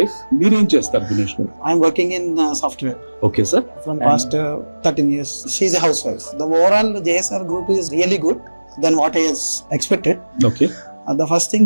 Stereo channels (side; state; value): both; inverted; correlation -1.00